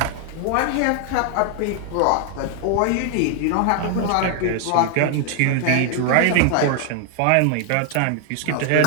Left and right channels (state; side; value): different; both; correlation 0.00